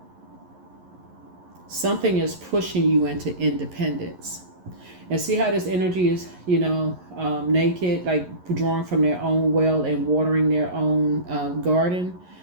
Something is pushing you into independence. And see how this energy is, naked, like drawing from their own well and watering their own garden.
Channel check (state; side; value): late; left; 11 ms